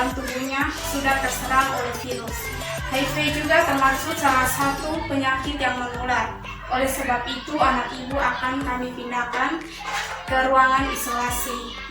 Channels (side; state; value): both; identical; correlation 1.00